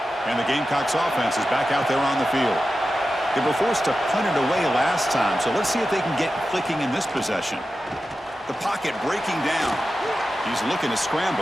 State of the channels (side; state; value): both; normal; correlation 0.92